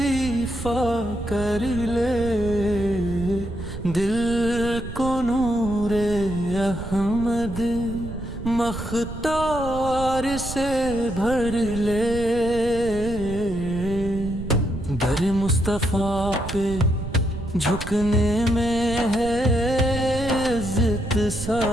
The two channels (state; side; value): noise; right; rumble, 9 dB below the sound